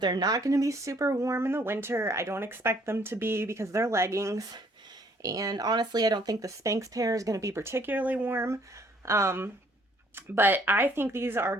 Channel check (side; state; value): both; normal; correlation 0.63